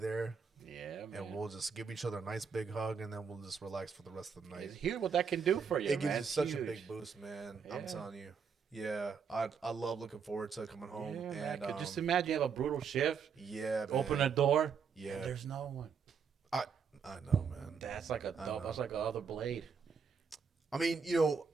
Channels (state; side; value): quieter; left; 6.1 dB